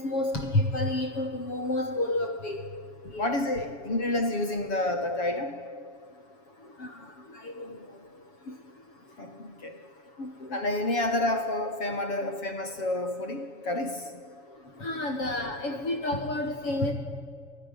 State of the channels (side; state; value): right; late; 7.2 ms